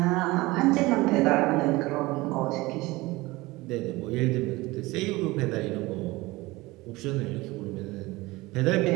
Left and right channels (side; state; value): left; quieter; 20.9 dB